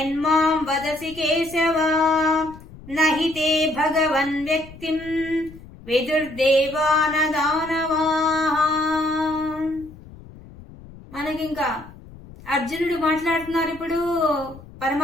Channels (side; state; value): left; noise; rumble, 19 dB below the sound